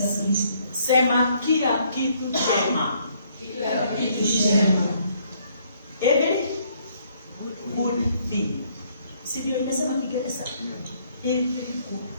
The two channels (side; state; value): both; inverted; correlation -0.67